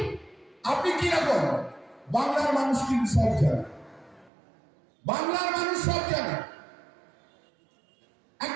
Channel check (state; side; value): drops out; left; at 4.3 s